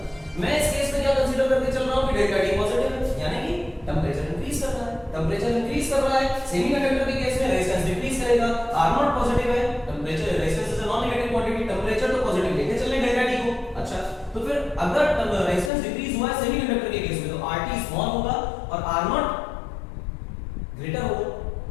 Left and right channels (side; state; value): right; drops out; at 15.7 s